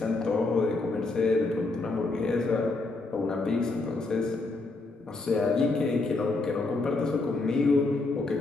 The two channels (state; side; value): quieter; right; 3.4 dB